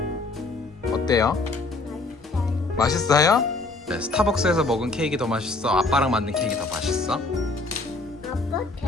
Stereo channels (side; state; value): right; quieter; 3.3 dB